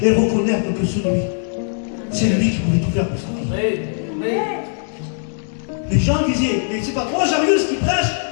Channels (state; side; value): silent; right; digital silence